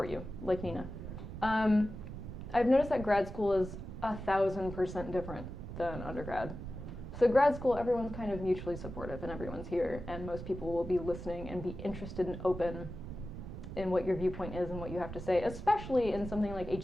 you, like Nina. I've noticed that grad school is 1,000% different than undergrad. So grad school, everyone's kind of mutually supportive and everyone's here, and most people will be listening and be interested and open in what your viewpoint is and what you have to say, especially in something like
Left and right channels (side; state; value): right; noise; rumble, 9 dB below the sound